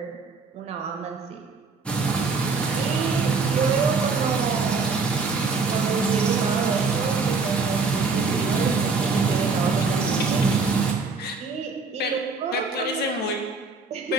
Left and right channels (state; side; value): quieter; left; 4.3 dB